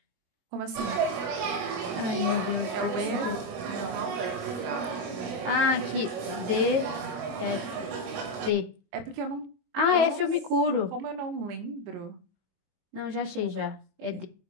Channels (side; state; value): left; late; 22 ms